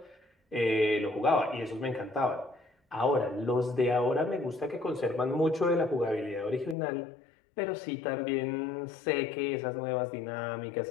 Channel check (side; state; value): right; drops out; at 6.8 s